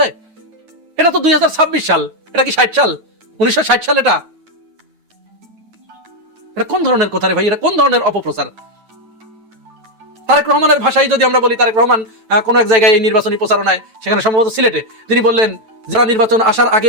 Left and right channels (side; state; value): left; late; 9.1 ms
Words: এটা তো 2026 সাল, এটা কি 60 সাল, 1960 সাল? এটা কোন ধরনের কথা রে ভাই? এটা কোন ধরনের অপপ্রচার? তারেক রহমানের ভাষায় যদি আমরা বলি, তারেক রহমান কোন এক জায়গায় এই নির্বাচনী প্রচারণায়, সেখানে সম্ভবত সিলেটে, তিনি বললেন যারা নির্বাচন আসার আগে